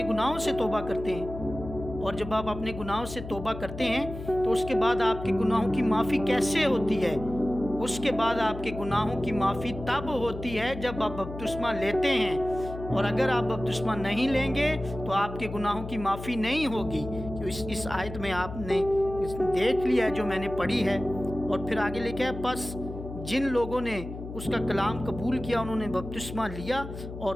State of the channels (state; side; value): noise; left; hum, 10 dB below the sound